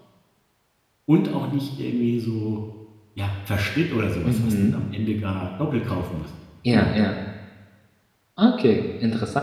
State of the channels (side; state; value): both; identical; correlation 1.00